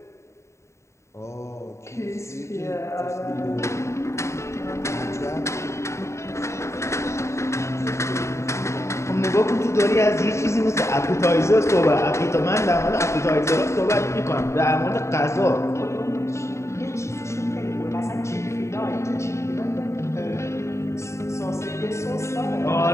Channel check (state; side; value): late; right; 0.14 ms